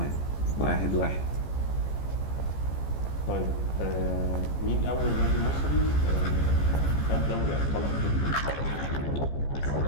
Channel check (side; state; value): right; late; 14 ms